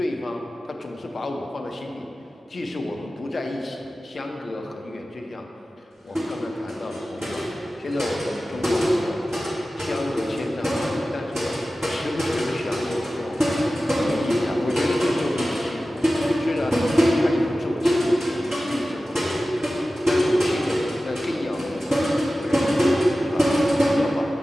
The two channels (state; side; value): normal; both; correlation 0.95